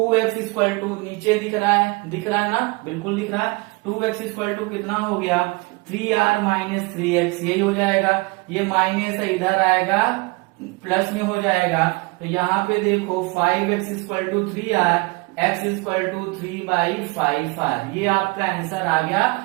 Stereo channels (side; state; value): left; quieter; 26.2 dB